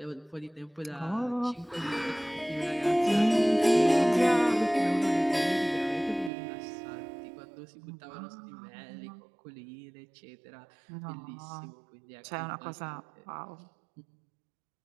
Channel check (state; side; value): drops out; left; at 6.3 s